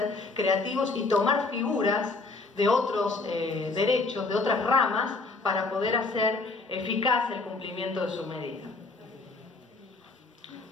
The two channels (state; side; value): quieter; right; 3.6 dB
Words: creativos y tomar figuras de otros derechos, de otras ramas, para poder hacer eficaz el cumplimiento de su medida.